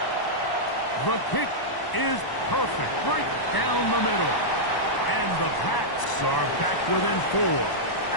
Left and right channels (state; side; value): late; right; 1.0 ms